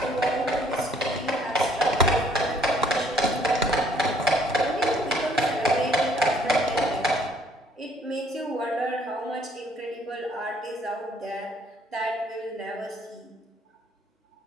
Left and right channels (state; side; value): normal; both; correlation 0.62